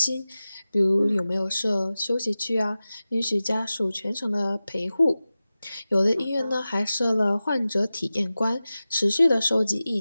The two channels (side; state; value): both; inverted; correlation -0.95